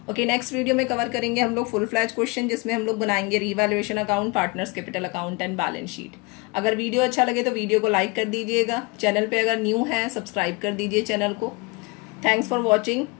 ओके, नेक्स्ट वीडियो में कवर करेंगे हम लोग फुल फ्लैज क्वेश्चन, जिसमें हम लोग बनाएंगे revaluation account, partners capital account and balance sheet. अगर वीडियो अच्छा लगे तो वीडियो को लाइक कर दीजिएगा। चैनल पे अगर न्यू है सब्सक्राइब कर दीजिए चैनल को। थैंक्स फॉर वॉचिंग,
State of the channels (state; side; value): quieter; right; 26.4 dB